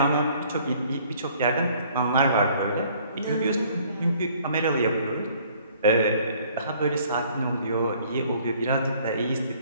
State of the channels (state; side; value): inverted; both; correlation -0.58